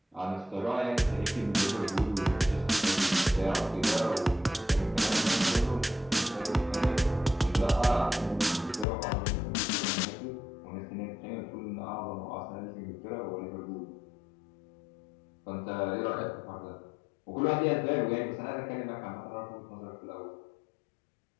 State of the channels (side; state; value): right; drops out; at 8.8 s